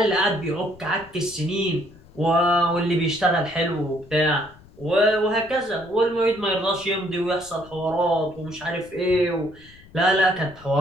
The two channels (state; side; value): noise; left; rumble, 24 dB below the sound